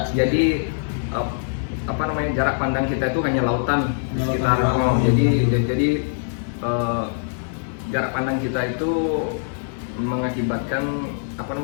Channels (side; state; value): right; silent; digital silence